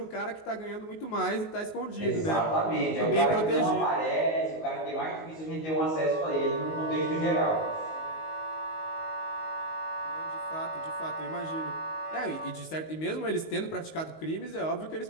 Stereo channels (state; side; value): late; right; 19 ms